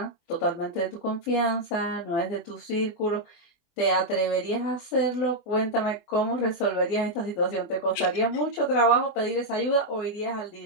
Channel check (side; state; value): right; late; 24 ms